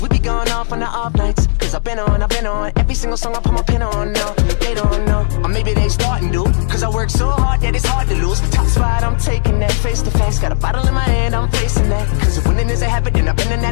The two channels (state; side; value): silent; right; digital silence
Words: we be going off on the off nights. Cause I've been on every single song I put my pin on. No, they don't know. Or maybe they starting to. Cause I work so hard that it's hard to lose. Top spot, I'm taking that face to face. Got a bottle in my hand, I'm facing that. Cause if winning is a habit, then I've been an